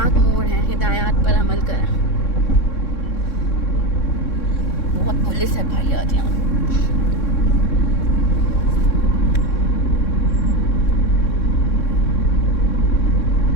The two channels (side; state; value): right; late; 3.6 ms